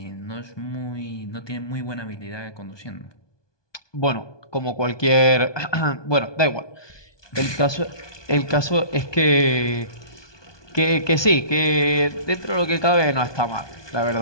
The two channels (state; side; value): late; right; 1.2 ms